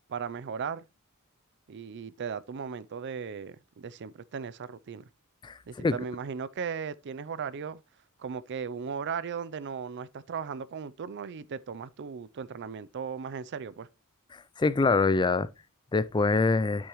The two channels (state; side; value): normal; both; correlation 0.33